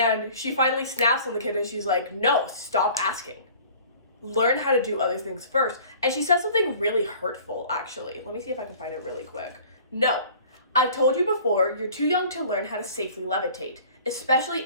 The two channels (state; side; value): inverted; both; correlation -0.48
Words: she finally snaps on the kid and she's like, no, stop asking. Learn how to do other things first. And she said something really hurtful, actually. Let me see if I can find it really quick. No, I've told you before, you're too young to learn how to safely levitate, especially